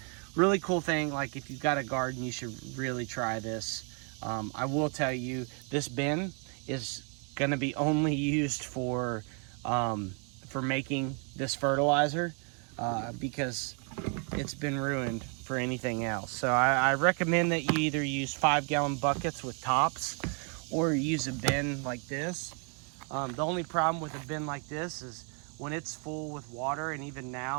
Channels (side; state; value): left; quieter; 38.7 dB